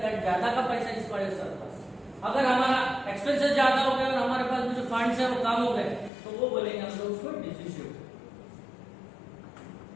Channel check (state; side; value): drops out; right; at 6.1 s